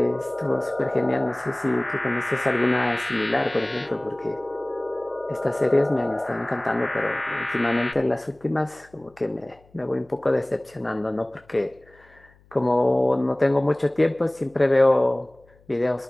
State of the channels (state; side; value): noise; left; hum, 30 dB below the sound